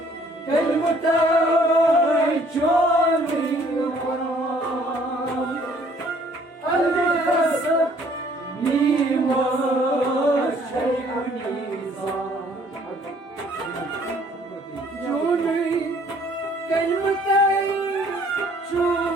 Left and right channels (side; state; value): both; normal; correlation 0.60